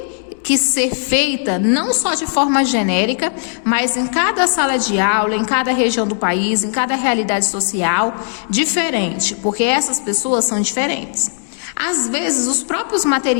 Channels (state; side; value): silent; right; 68 dB below the other